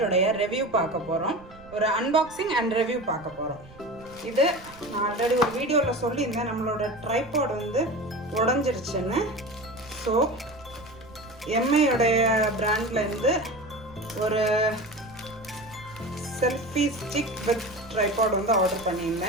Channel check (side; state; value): right; noise; rumble, 21 dB below the sound